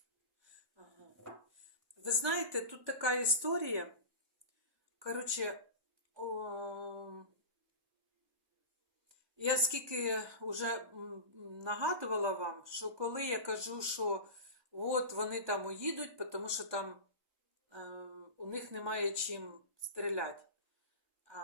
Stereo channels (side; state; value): left; late; 1.2 ms